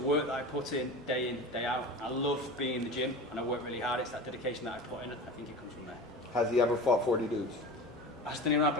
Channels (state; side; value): normal; both; correlation 0.32